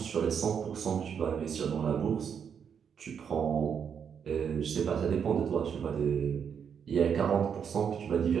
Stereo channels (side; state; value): left; quieter; 7.4 dB